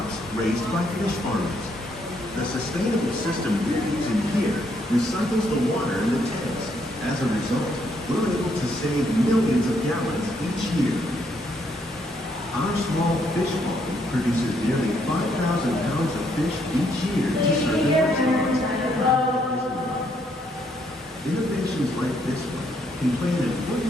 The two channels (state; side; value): normal; both; correlation 0.72